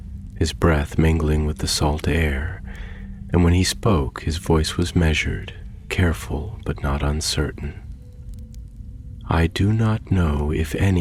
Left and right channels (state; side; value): identical; both; correlation 1.00